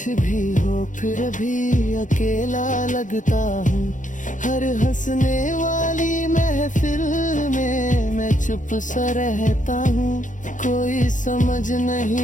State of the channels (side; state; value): right; late; 0.37 ms